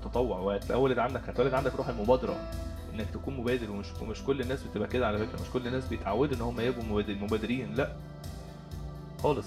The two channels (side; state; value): both; identical; correlation 1.00